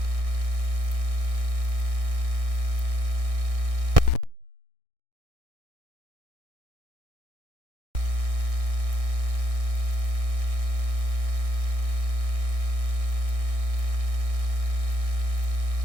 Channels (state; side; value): late; left; 1.6 ms